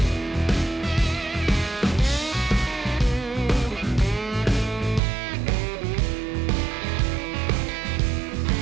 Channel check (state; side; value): drops out; left; at 5.0 s